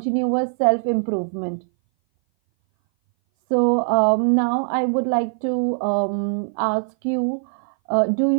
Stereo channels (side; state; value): left; silent; 59 dB below the other